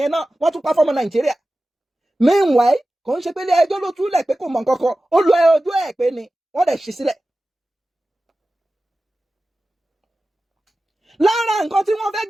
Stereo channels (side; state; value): both; normal; correlation 0.95